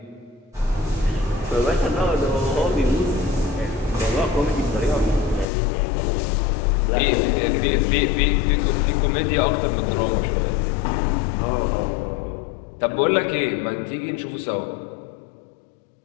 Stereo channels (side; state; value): right; drops out; at 5.5 s